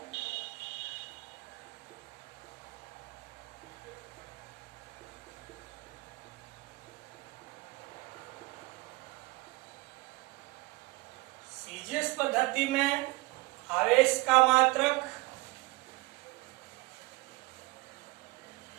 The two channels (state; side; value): quieter; left; 23.8 dB